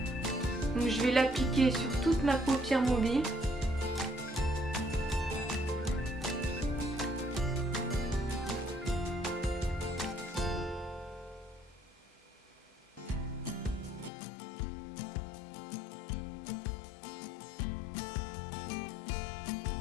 Donc je vais l'appliquer sur toute ma paupière mobile.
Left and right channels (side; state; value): right; drops out; at 14.1 s